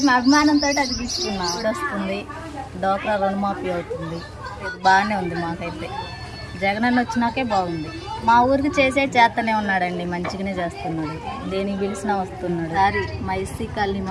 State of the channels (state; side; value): identical; both; correlation 1.00